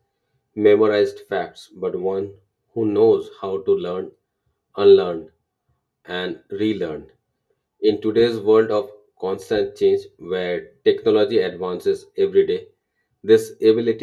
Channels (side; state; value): both; identical; correlation 1.00